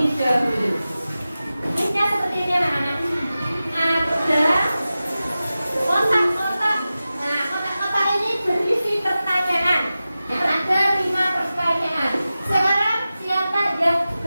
dahulu. Kuisnya seperti ini anak-anak. Ada kotak-kotak. Nah, kotak-kotak ini berisi pertanyaan. Ada 5 pertanyaan. Sekarang siapa yang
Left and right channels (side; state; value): both; inverted; correlation -0.95